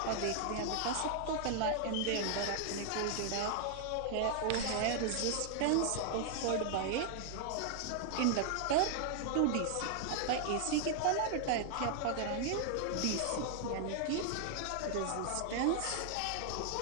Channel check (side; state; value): both; different; correlation 0.00